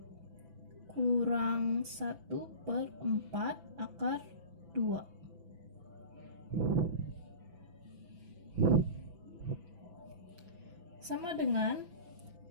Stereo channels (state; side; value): late; left; 6.0 ms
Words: kurang 1/4 akar 2. Sama dengan